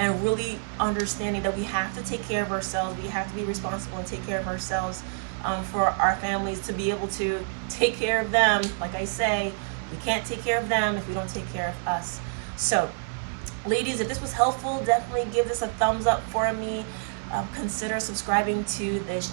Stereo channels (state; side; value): silent; left; digital silence